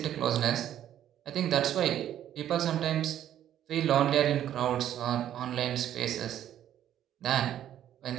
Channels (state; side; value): quieter; left; 11.2 dB